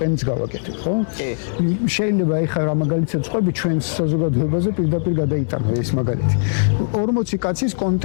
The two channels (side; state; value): right; silent; digital silence